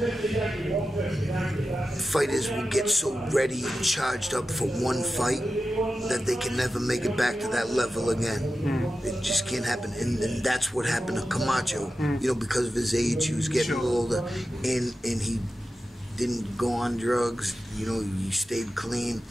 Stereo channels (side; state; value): both; normal; correlation 0.92